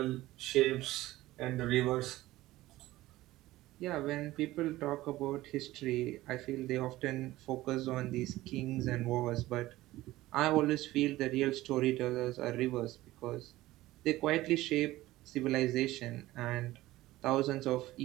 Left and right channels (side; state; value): left; quieter; 17.0 dB